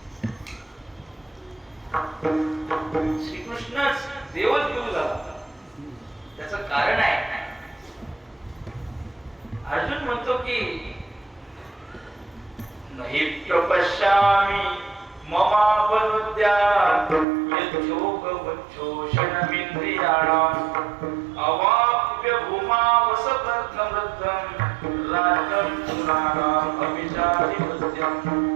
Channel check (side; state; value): left; drops out; at 17.2 s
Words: श्रीकृष्णच देवच गुरु झाला. त्याचं कारण आहे, अर्जुन म्हणतो की नहि प्रपश्यामि ममापनुद्यात् यच्छोकवच्छोषणमिन्द्रियाणाम् अवाप्य भूमावसपत्नमृद्धं राज्यं सुराणाम् अभिचारिपत्यम्.